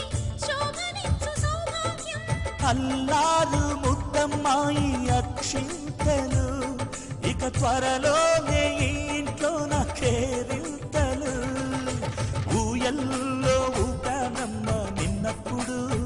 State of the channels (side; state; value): both; identical; correlation 1.00